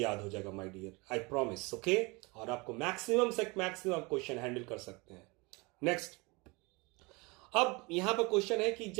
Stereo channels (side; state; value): left; quieter; 26.5 dB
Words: हो जाएगा my dear, I promise. Okay, और आपको मैक्सिमम से मैक्सिमम क्वेश्चन हैंडल कर सकते हैं। नेक्स्ट, अब यहां पर क्वेश्चन है कि